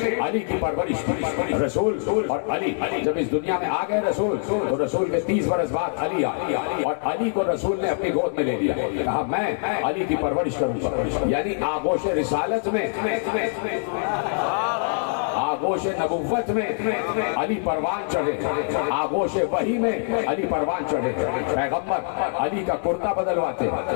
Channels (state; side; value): silent; right; 63 dB below the other